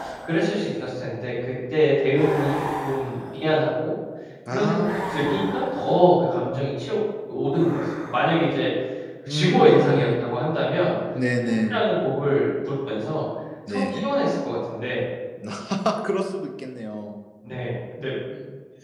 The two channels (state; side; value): identical; both; correlation 1.00